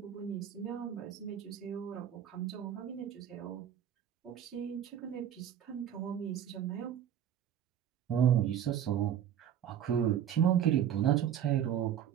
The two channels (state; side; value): quieter; left; 9.7 dB